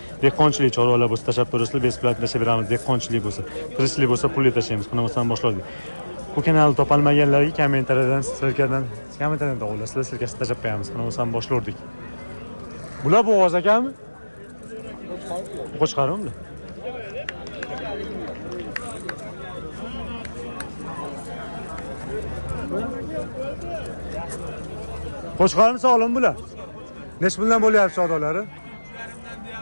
Dehqonchilik chorvalar bo'lsa tashlab turasizlar, beplat tashlab beramiz. Dehqonchilik bo'lsa, tirishchilik bo'lsa pulli tashlaymiz. Qanamasdan boshladik. Bu kanalni topolmaganlarga kommentariydan tog'ulasizlar, sirkasi tashlab qo'yamiz. Qanamasdan boshladik. Bular bo'g'oz ekanmi? Qo'chqarmi bular? Qo'chqarmi sog'lim bular? Necha puldan bo'lyapti savdolari?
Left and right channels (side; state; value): both; inverted; correlation -1.00